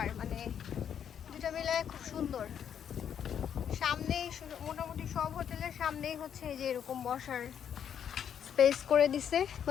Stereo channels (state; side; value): quieter; right; 8.6 dB